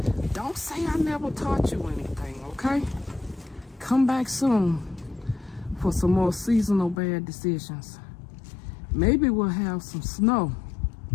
Don't say I never taught you anything, okay? Come back soon for some more seasonal bad decisions. Maybe we'll have some snow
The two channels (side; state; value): right; drops out; at 7.0 s